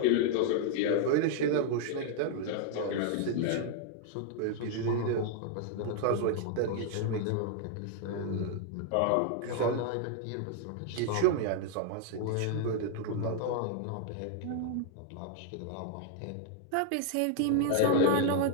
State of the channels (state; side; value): different; both; correlation 0.00